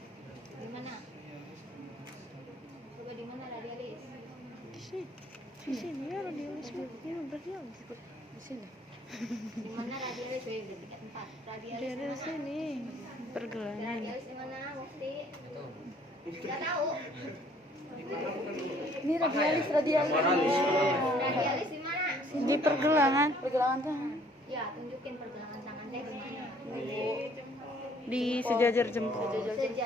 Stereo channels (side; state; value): both; normal; correlation 0.60